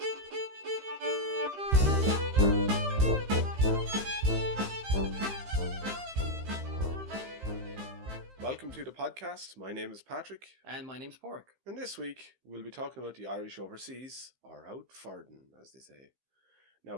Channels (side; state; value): left; late; 15 ms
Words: Welcome to the podcast. My name is Patrick. And my name's Padraic. And this week we'll be talking about the Irish overseas, or out farden, as they say. Now,